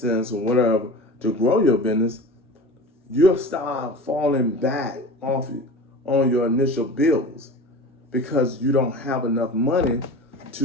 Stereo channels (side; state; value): both; normal; correlation 0.35